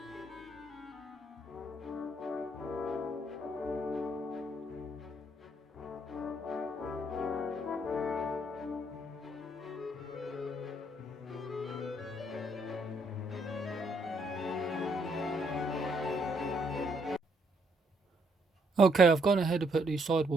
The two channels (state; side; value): normal; both; correlation 0.71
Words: Okay, I've gone ahead and put these